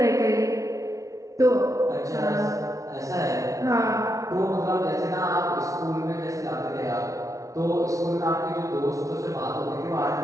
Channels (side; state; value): left; late; 0.16 ms